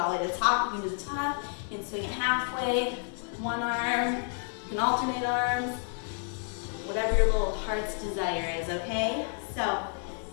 the way to the top. You can do the top. You can swing it halfway. One arm. You can alternate arms. Whatever your little heart's desire is, okay? So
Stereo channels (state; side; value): silent; right; 58 dB below the other